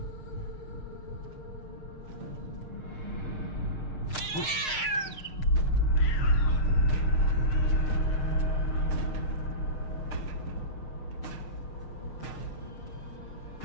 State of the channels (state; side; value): late; right; 6.5 ms